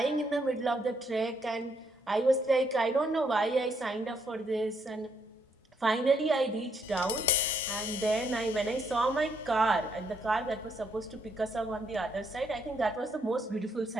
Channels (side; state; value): both; normal; correlation 0.73